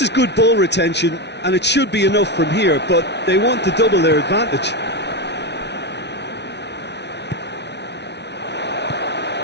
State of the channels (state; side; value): late; right; 0.50 ms